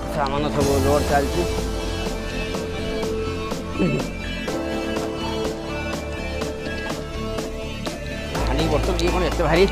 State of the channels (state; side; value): identical; both; correlation 1.00